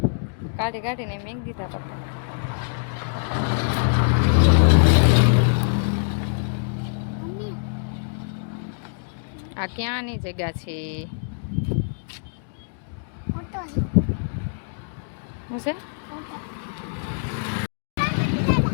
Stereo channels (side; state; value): right; silent; digital silence